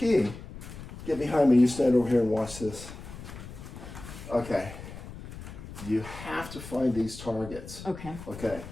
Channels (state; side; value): noise; left; rumble, 13 dB below the sound